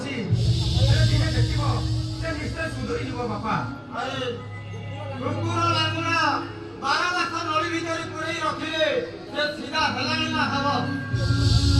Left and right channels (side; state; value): both; identical; correlation 1.00